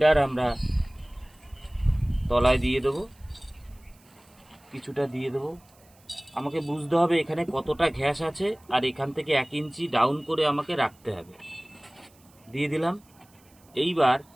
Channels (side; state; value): right; noise; hiss, 30 dB below the sound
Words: আমরা তলায় দিয়ে দেবো, কিছুটা দিয়ে দেবো। আমাকে বুঝতে হবে এখানে কতটা ঘ্যাস আছে, আর এখান থেকে 1 ইঞ্চি ডাউন করে আমাকে রাখতে হবে। দিয়ে দিলাম। এইবার